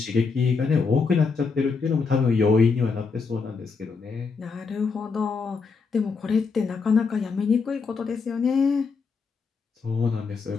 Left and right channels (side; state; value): right; quieter; 4.9 dB